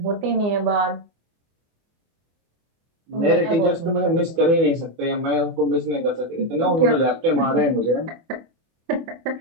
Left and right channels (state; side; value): late; left; 24 ms